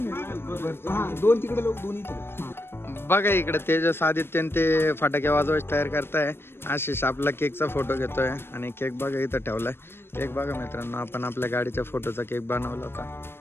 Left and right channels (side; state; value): right; late; 0.11 ms